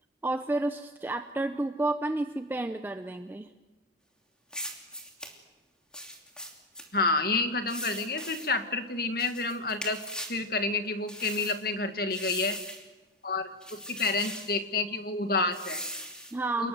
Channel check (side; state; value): both; normal; correlation 0.17